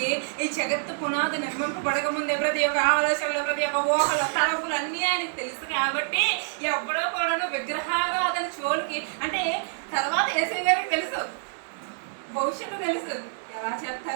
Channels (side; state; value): left; silent; digital silence